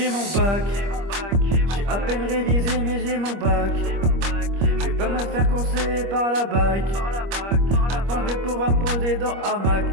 mon bac, j'ai à peine révisé mais j'ai mon bac. Je vais pas me faire courser par la bac. Maintenant je vais pouvoir me poser dans hamac.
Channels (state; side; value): late; left; 25 ms